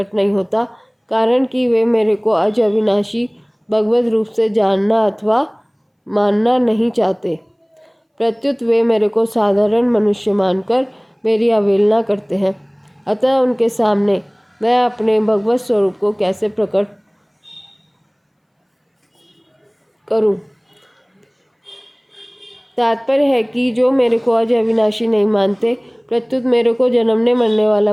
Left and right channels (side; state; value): both; identical; correlation 1.00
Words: नहीं होता, कारण कि वे मेरे को अज अविनाशी भगवत रूप से जानना अथवा मानना नहीं चाहते। प्रत्युत वे मेरे को साधारण मनुष्य मानकर मेरी अवहेलना करते हैं। अतः उनके सामने मैं अपने भगवत स्वरूप को कैसे प्रकट करूं? तात्पर्य है कि जो मेरे को अज अविनाशी नहीं मानते, प्रत्युत मेरे को जन्मने मरने